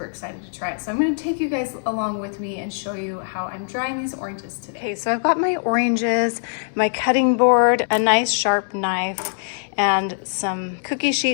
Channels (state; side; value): silent; right; 64 dB below the other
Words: excited to try it. So I'm going to take you guys along with me and show you how I'm drying these oranges today. Okay, so I've got my oranges, my cutting board, a nice sharp knife, and some cookie